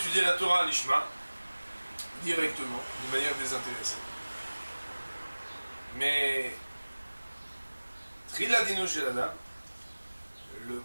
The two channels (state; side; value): inverted; both; correlation -1.00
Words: la Torah à l'Ishma directement, de manière désintéressée. Mais Trila Dino Shel Adam, le